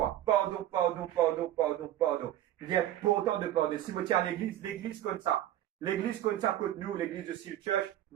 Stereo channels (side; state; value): left; quieter; 12.8 dB